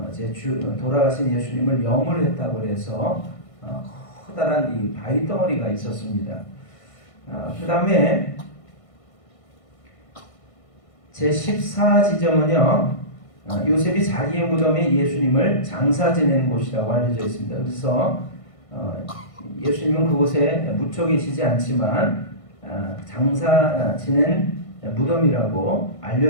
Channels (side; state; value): right; late; 1.5 ms